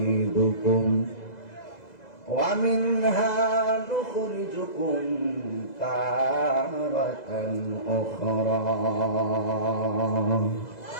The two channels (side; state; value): right; late; 2.0 ms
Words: ওয়া মিনহা নুখরিজুকুম তারাতান উখরা